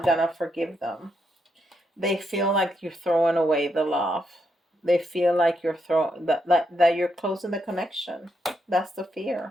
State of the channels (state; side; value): normal; both; correlation 0.80